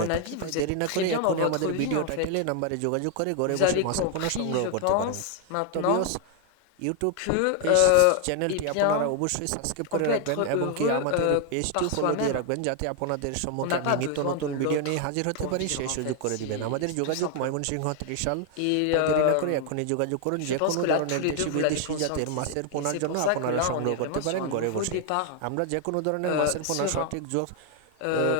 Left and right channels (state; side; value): different; both; correlation 0.00